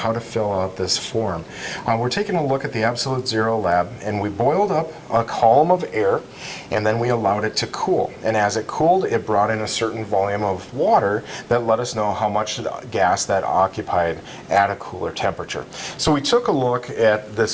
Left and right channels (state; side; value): identical; both; correlation 1.00